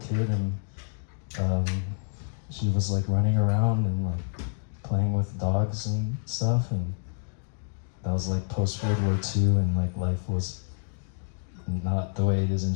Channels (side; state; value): right; silent; 59 dB below the other